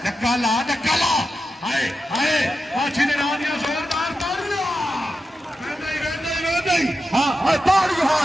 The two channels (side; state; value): both; normal; correlation 0.89